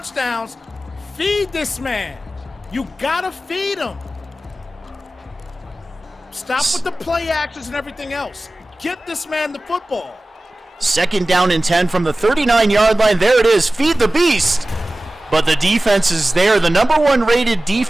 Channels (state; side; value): normal; both; correlation 0.96